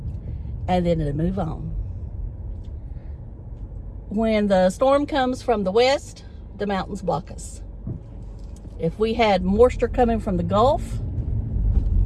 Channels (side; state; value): both; identical; correlation 1.00